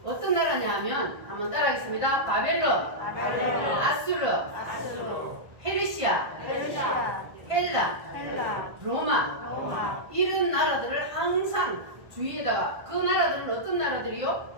어떤 나라냐 하면 한번 따라하겠습니다. 바벨론, 아수르, 페르시아, 헬라, 로마. 이런 나라들을 항상 주위에다가 그 나라들은 어떤 나라들이요?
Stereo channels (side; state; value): left; late; 1.5 ms